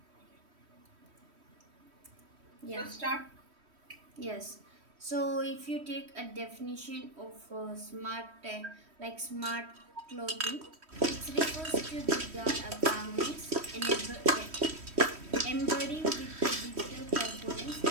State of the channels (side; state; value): left; late; 3.1 ms